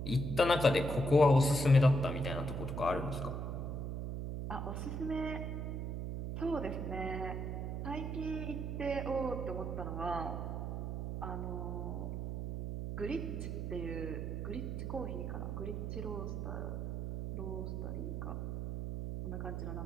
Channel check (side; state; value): right; noise; hum, 3 dB below the sound